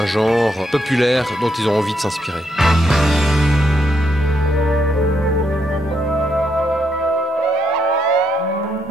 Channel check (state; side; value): normal; both; correlation 0.77